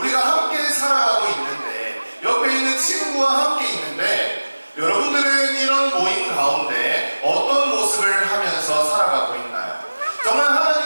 함께 살아가고 있는데 옆에 있는 친구와 함께 있는데 여러분들은 이런 모임 가운데 어떤 모습을 하면서 살아가고 있나요? 정말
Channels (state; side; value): inverted; both; correlation -1.00